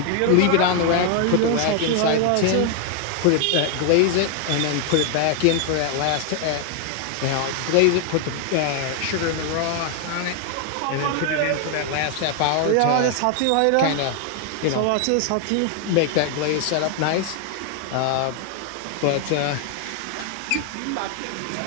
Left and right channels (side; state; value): both; different; correlation 0.00